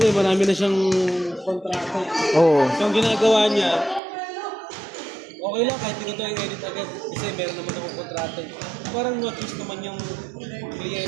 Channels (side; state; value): left; drops out; at 4.0 s